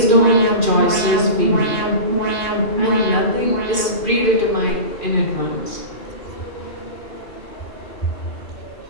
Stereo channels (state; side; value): late; right; 2.4 ms